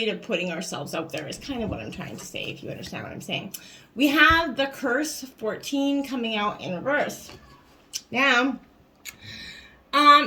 of putting ourselves out there, is kind of what I'm trying to say, if you understand what I'm saying. We have the Curse 14 coming out in reverse. Now,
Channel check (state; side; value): identical; both; correlation 1.00